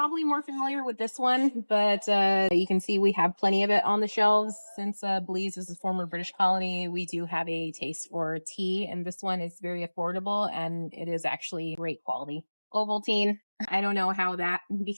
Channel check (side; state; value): both; inverted; correlation -1.00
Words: more familiar with this one, but you can see we have plenty of it on the shelves. Since Belize is a former British colony, we do have a taste for tea, and this one is very affordable and it is actually great quality. Ovaltine, I don't know how that